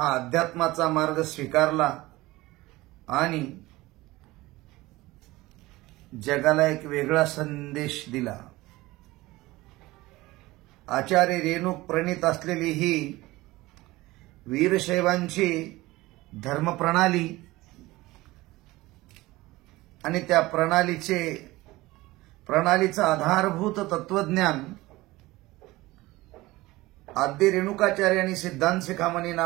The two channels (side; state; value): left; quieter; 19.4 dB